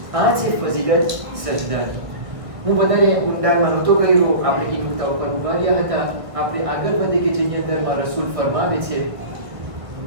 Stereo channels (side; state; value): left; late; 1.5 ms